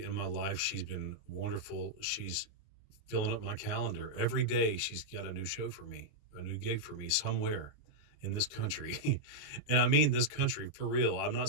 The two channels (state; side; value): late; right; 28 ms